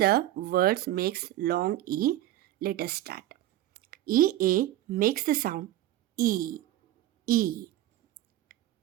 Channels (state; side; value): quieter; left; 14.2 dB